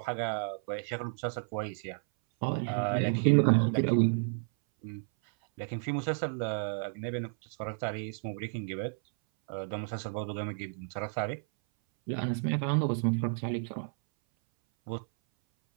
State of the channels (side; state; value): left; silent; 57 dB below the other